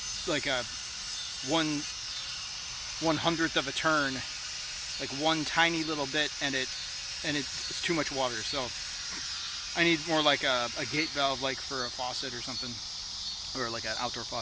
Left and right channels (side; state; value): both; identical; correlation 1.00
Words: like a 1/100th of a turn, like one tiny little bit, and it's too much water. So I need more like a gate valve, like for a faucet or something. or like an outdoor